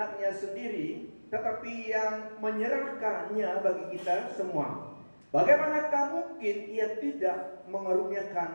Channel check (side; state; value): both; inverted; correlation -1.00